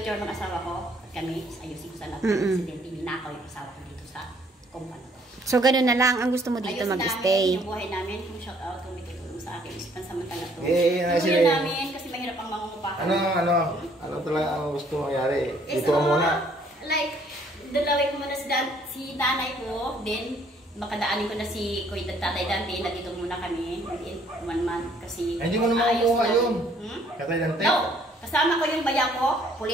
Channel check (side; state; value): both; normal; correlation 0.63